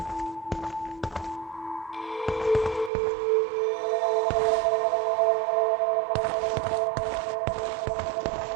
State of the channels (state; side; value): drops out; left; at 2.9 s